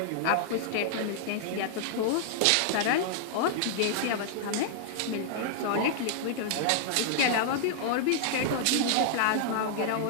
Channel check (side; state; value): both; different; correlation -0.01